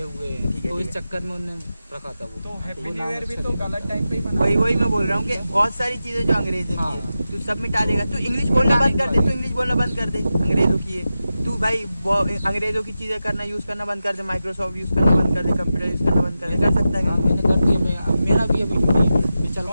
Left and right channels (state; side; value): inverted; both; correlation -0.92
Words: हुए हैं, तो इस चक्कर में उन्होंने रखा था वो। तो हैप्पी वो न्यू नाम ईयर भी अच्छा तो नहीं। गलत टाइम पे ही मना। वही मैं बोल रहा हूँ कि बहुत सारी चीजें जो अंग्रेज ने की है तू सब मिटा देगा। तू इंग्लिश बोलना बंद कर दे, तू इंग्लिश बोलना बंद कर दे, अंग्रेजों की है तू भाई अंग्रेजों की चीजें करना यूज करना बंद कर दे, माइक्रोसॉफ्ट यूज करना बंद कर दे, कंप्यूटर यूज करना बंद कर दे, कर सकता है हाँ मैंने कर दिया, मेरा भी अभी ये चल